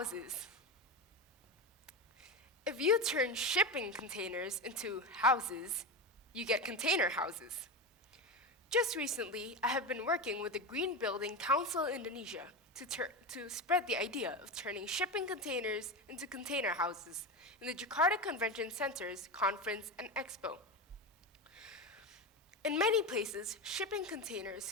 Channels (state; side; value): normal; both; correlation 0.19